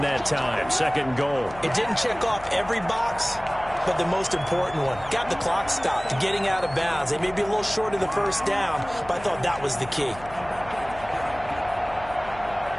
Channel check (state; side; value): noise; left; hum, 17 dB below the sound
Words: that time, 2nd goal. It didn't check off every box, but the most important one, got the clock stopped, getting out of bounds. They may be a little short of the first down, but I thought that was the key.